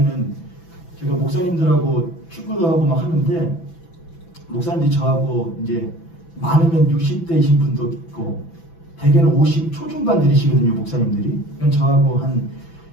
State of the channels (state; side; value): late; right; 6.0 ms